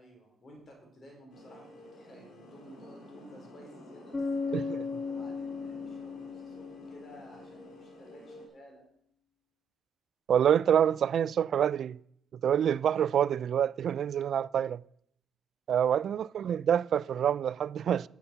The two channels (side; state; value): left; quieter; 7.5 dB